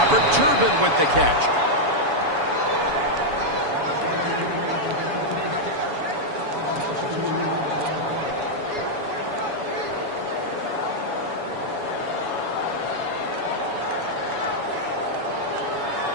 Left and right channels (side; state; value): left; late; 7.1 ms